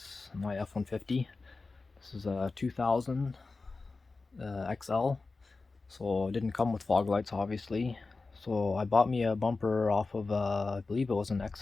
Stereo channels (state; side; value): quieter; right; 3.8 dB